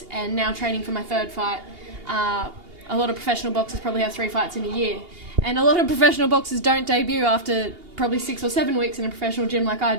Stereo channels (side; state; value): left; late; 2.8 ms